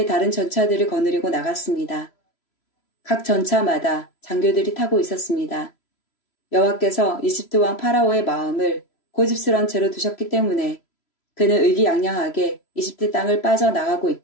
다른 전차들을 거느리고 나갔습니다. 각 전차마다 장교들이 타고 있었습니다. 여호와께서 이집트 왕 파라오의 마음을 고집스런 채로 두셨기 때문에 그는 의기양양하게 이집트 땅을 빠져나가고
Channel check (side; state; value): right; late; 3.0 ms